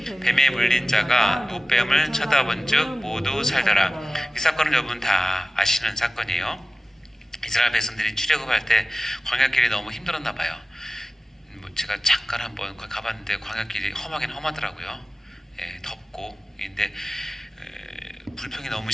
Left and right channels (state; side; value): normal; both; correlation 0.96